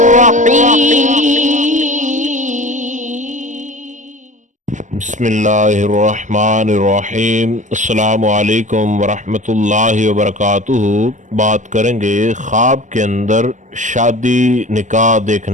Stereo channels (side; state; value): left; late; 0.36 ms